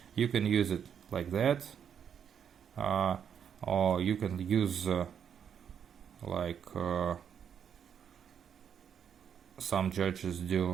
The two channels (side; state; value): left; quieter; 8.1 dB